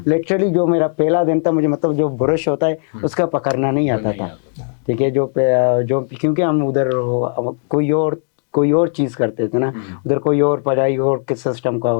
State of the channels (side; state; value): right; silent; digital silence